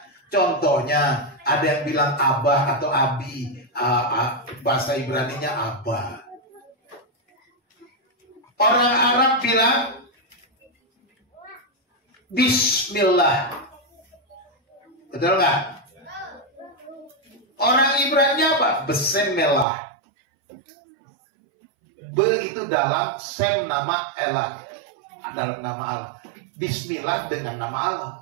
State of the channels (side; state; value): left; drops out; at 19.7 s